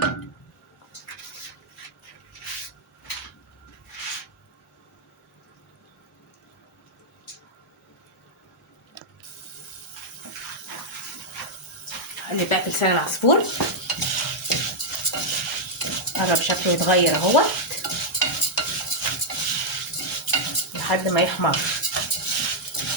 اقلب بقى في لسان العصفور. قرب شكله يتغير اهوت لحد ما يحمر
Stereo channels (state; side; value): normal; both; correlation -0.03